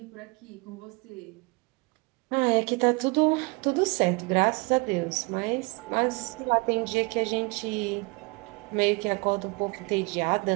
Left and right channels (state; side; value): quieter; left; 27.7 dB